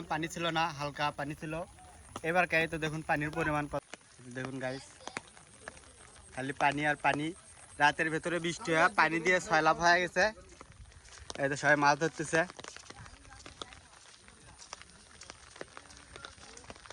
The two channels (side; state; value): both; identical; correlation 1.00